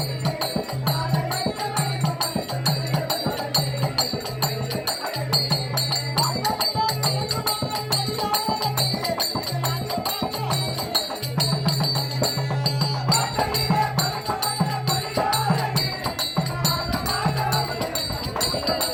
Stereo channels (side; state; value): both; identical; correlation 1.00